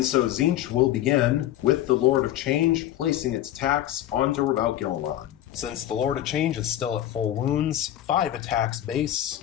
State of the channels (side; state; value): right; quieter; 12.7 dB